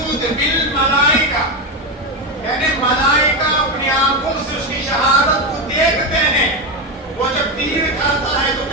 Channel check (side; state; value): both; normal; correlation 0.12